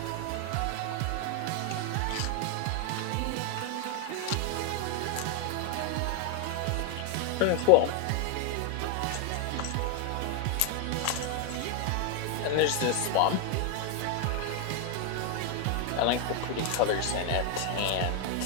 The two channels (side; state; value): both; different; correlation 0.01